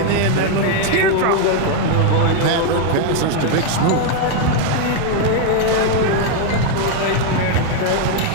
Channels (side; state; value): both; different; correlation 0.00